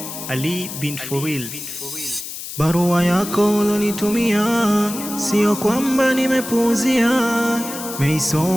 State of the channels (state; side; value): noise; left; hiss, 9 dB below the sound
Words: Ali bin Furil. Barua yako ulonitumia sio kwamba nimepuuzia,